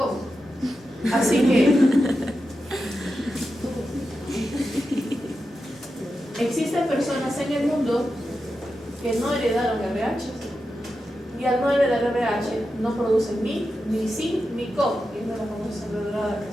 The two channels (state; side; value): normal; both; correlation 0.90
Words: Así que existen personas en el mundo que no heredaron RH. Y al no heredar RH no producen ni zinc ni CO, que es de la famosa sangre dorada que